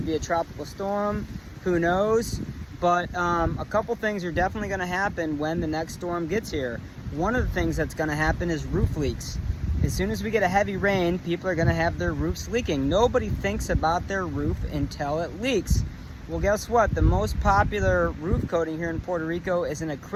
be a tropical storm, who knows? But a couple things are definitely going to happen when the next storm gets here. One of the things that's going to happen is roof leaks. As soon as we get a heavy rain, people are going to have their roofs leaking. Nobody thinks about their roof until it leaks. Well, guess what? The most popular roof coating here in Puerto Rico is an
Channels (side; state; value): both; identical; correlation 1.00